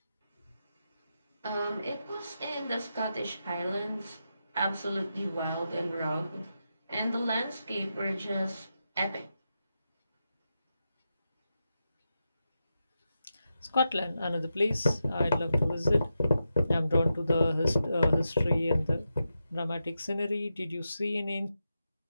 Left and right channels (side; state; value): both; inverted; correlation -0.88